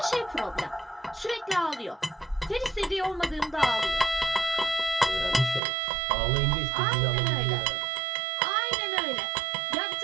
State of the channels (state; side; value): drops out; left; at 5.6 s